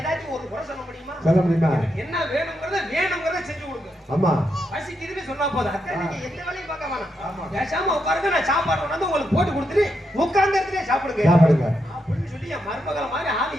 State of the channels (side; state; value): both; normal; correlation 0.82